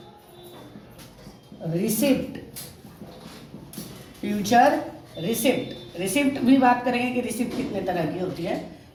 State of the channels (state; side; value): identical; both; correlation 1.00